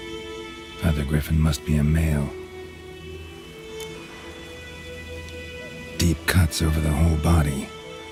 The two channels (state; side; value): identical; both; correlation 1.00